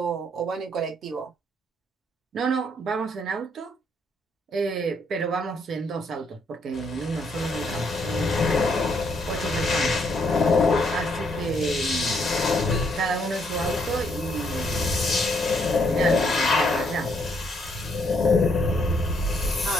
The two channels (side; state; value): both; normal; correlation 0.72